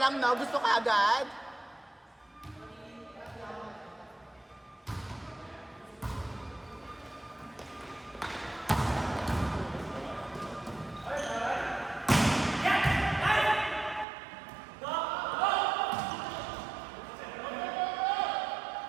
lang, no? Gusto ka agad?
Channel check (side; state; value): left; drops out; at 14.1 s